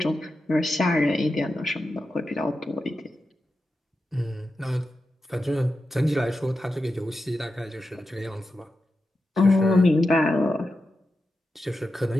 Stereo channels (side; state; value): both; normal; correlation 0.90